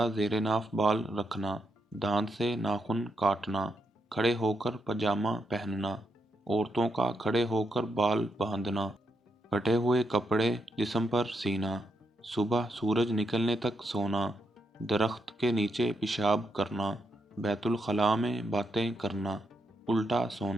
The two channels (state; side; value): normal; both; correlation 0.81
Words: زیر ناف بال رکھنا، دانت سے ناخن کاٹنا، کھڑے ہو کر پاجامہ پہننا، عورتوں کا کھڑے ہو کر بال باندھنا، پھٹے ہوئے کپڑے جسم پر سینا، صبح سورج نکلنے تک سونا، درخت کے نیچے پیشاب کرنا، بیت الخلاء میں باتیں کرنا، الٹا